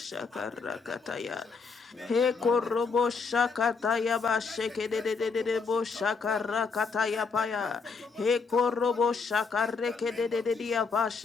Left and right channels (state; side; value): quieter; right; 4.9 dB